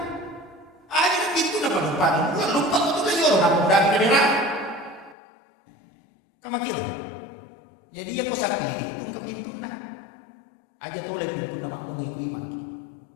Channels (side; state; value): right; drops out; at 5.2 s